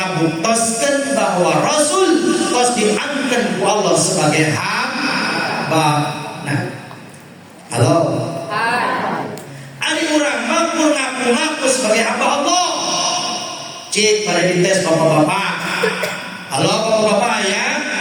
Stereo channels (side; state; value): both; identical; correlation 1.00